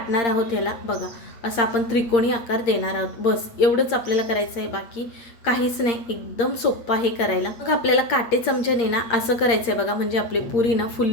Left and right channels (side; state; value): right; late; 8.6 ms